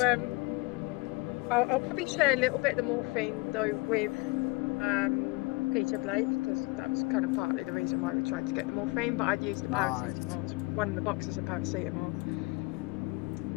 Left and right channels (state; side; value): quieter; right; 26.2 dB